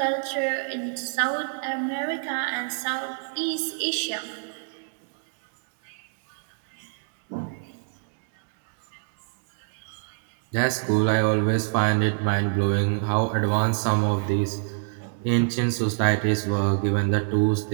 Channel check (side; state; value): left; silent; 61 dB below the other